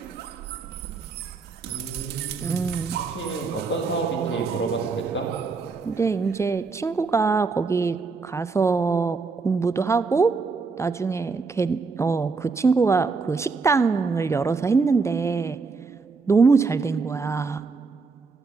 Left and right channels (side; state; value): left; quieter; 4.5 dB